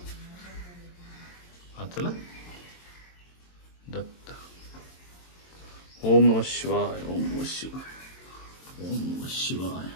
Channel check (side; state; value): right; late; 22 ms